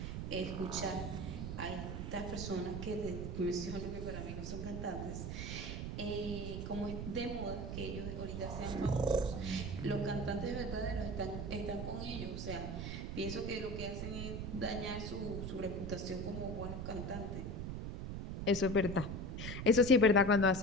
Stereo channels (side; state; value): right; noise; rumble, 4 dB below the sound